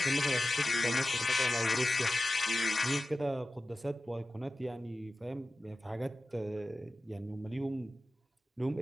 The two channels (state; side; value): normal; both; correlation 0.94